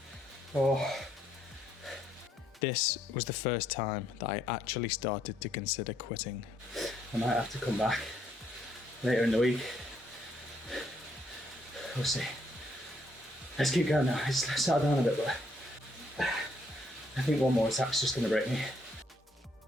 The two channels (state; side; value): normal; both; correlation 0.71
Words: oh. This was the first time that I actually started to consider quitting. I might have to come back later in the week. We'll see. Let's keep going now. It's settled down a bit, but I think one more attack's just going to break me.